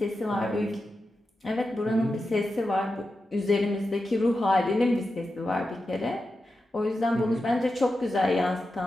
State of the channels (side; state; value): both; normal; correlation 0.90